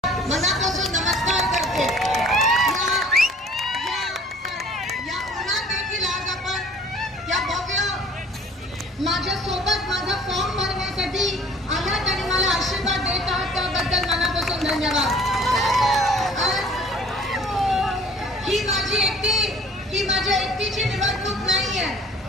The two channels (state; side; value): normal; both; correlation 0.52